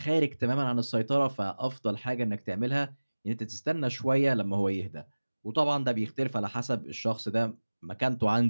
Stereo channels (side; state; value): both; inverted; correlation -1.00